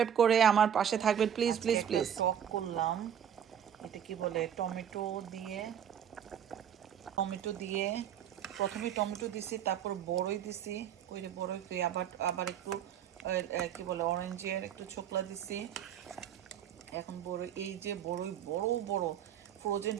করে আমার পাশে থাকবেন, প্লিজ প্লিজ প্লিজ। টক করলাম, এটা কি বলে টমেটো দিয়ে প্রথমে টমেটো দিছি, তারপর বড়ই দিছি। ওই যে বড়ই পেয়ে আবার একটু কি বলে অরেঞ্জের একটু ছোকলা দিছি। এখন বড়ই, এই যে বড়ই বড় বড় ফ্রোজেন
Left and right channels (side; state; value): left; quieter; 9.2 dB